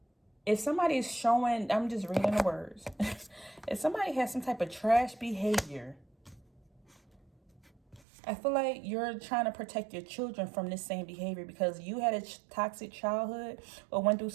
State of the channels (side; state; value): left; drops out; at 8.0 s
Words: If somebody is showing, I'm just reading the words. If somebody has some type of trash behavior, I feel like you're trying to protect your children from this same behavior because you had a toxic childhood or went through